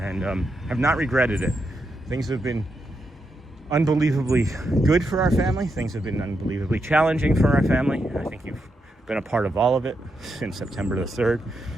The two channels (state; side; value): normal; both; correlation 0.83